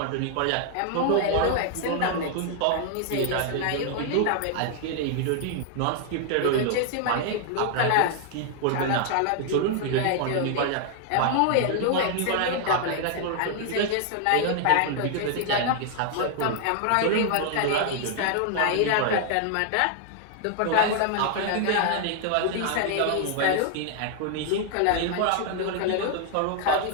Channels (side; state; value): both; different; correlation 0.00